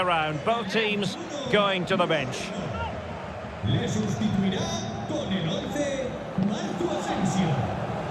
Both teams going to the bench. Le sustituirá con el 11 Marco Asensio.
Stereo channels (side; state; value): both; identical; correlation 1.00